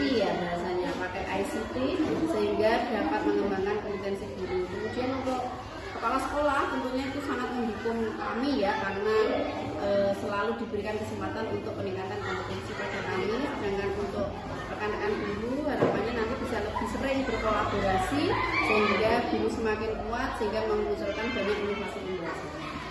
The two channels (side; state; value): both; identical; correlation 1.00